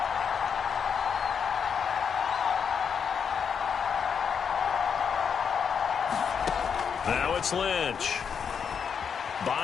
Now it's Lynch.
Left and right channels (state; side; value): quieter; right; 6.9 dB